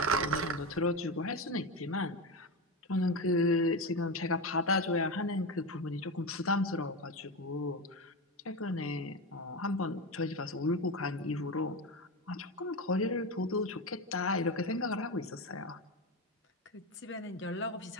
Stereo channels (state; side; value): normal; both; correlation 0.17